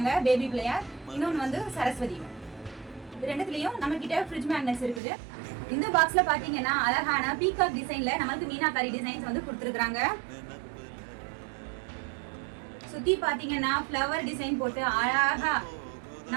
பேபி பிள்ளையார், இன்னொன்று வந்து சரஸ்வதி. இது ரெண்டுத்துலேயும் நம்மக்கிட்ட ஃப்ரிட்ஜ் மேக்னெட்ஸ் இருக்குது. இந்த பாக்ஸில் பார்த்தீங்கன்னா அழகான பீகாக் டிசைனில் நம்மளுக்கு மீனாக்காரி டிசைன்ஸ் வந்து கொடுத்துருக்குறாங்க. சுற்றி பார்த்தீங்கன்னா ஃப்ளவர் டிசைன் போட்டு அழகாக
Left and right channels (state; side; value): drops out; left; at 5.0 s